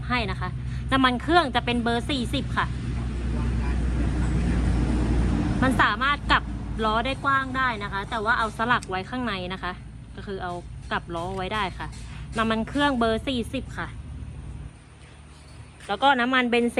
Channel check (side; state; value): both; identical; correlation 1.00